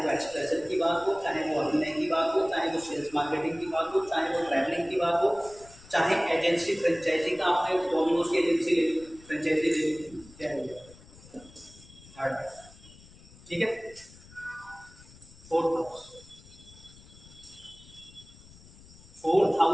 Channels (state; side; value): noise; left; rumble, 22 dB below the sound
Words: एक्सप्रेशन की बात हो, चाहे वो अभिनय की बात हो, चाहे वो सेल्स मार्केटिंग की बात हो, चाहे वो ट्रैवलिंग की बात हो, चाहे एजेंसी फ्रेंचाइजी का, आपने डोमिनोज की एजेंसी ले ली, फ्रेंचाइजी ले ली, क्या है थर्ड हाउस। ठीक है, फोर्थ हाउस, फोर्थ